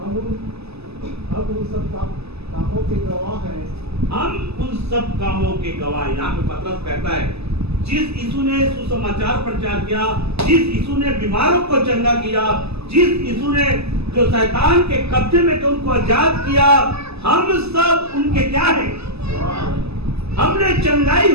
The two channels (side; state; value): left; late; 0.79 ms